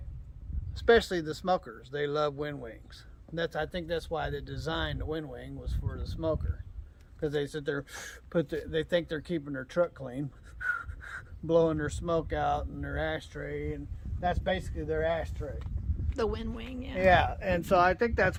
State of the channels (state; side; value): identical; both; correlation 1.00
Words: especially the smokers, they love wind wings. I think that's why they designed the wind wing, was for the smoker, because they sit there, they think they're keeping their truck clean, blowing their smoke out in their ashtray, and that's basically their ashtray. The wind wing, yeah. Yeah, and so I think